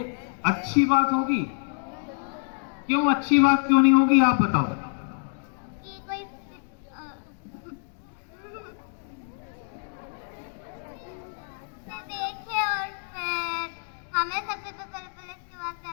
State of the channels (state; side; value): silent; right; 56 dB below the other